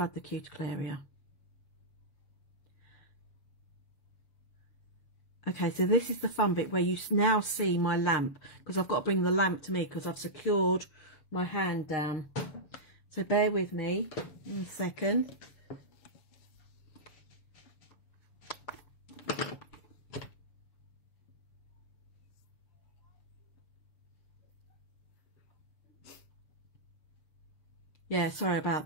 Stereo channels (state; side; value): late; right; 7.0 ms